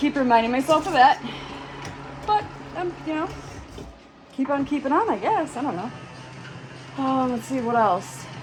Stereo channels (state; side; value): identical; both; correlation 1.00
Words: reminding myself of that. But, you know, keep on keeping on, I guess. I don't know. Let's see, what else?